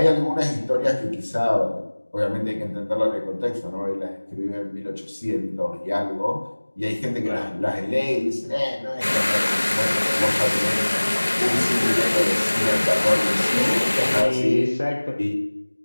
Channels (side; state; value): both; inverted; correlation -1.00